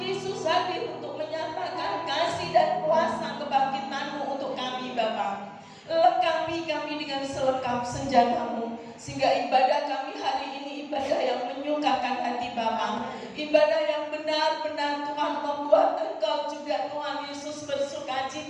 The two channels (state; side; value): identical; both; correlation 1.00